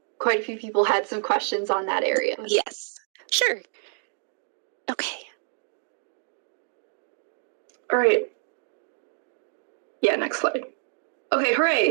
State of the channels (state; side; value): silent; left; 59 dB below the other